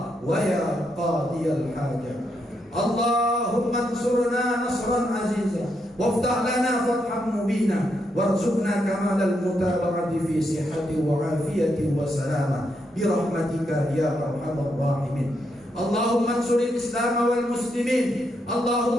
wa ya qadiyal hajat. Allahumma ansurna nasran aziza waftah lana fathan mubina warzuqna kamalal mutaba'ati fi sihhati wa afiyati wa salama bi rahmatika ya arhamar rahimin. Allahumma ansuril Islam wal muslimin,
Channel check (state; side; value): normal; both; correlation 0.80